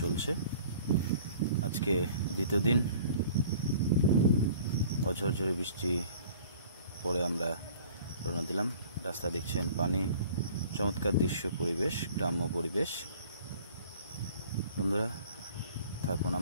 চলছে। আজকে দ্বিতীয় দিন। অঝরঝরে বৃষ্টি পরে আমরা রওনা দিলাম। রাস্তা দেখছেন পানি, চমৎকার দৃশ্য, পরিবেশ, গ্রাম্য পরিবেশ। বন্ধুরা থাকুন,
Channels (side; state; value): both; inverted; correlation -0.49